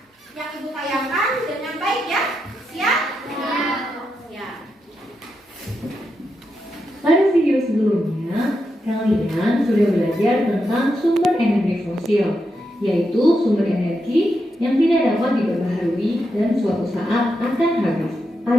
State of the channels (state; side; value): normal; both; correlation 0.85